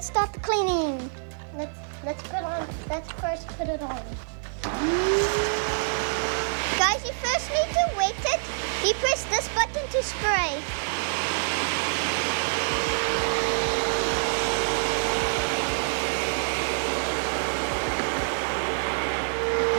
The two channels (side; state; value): left; silent; 61 dB below the other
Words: start the cleaning. Let's first put it on. Guys, you first need to wet it. You press this button to spray.